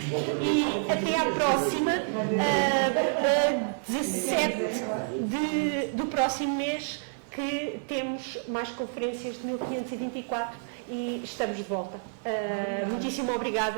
e até à próxima, 17 do próximo mês, que temos mais conferências de 1524 e estamos de volta. Muitíssimo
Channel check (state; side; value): silent; left; 59 dB below the other